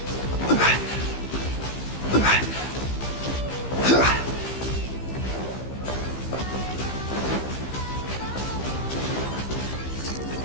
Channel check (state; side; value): late; right; 15 ms